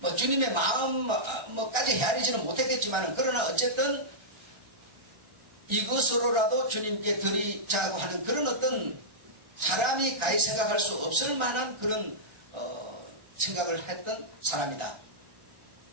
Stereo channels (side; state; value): left; late; 1.3 ms